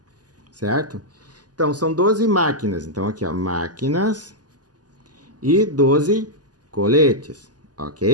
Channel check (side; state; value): left; late; 0.68 ms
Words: certo? Então, são 12 máquinas. Então, aqui, ó, máquinas e 12 coletes,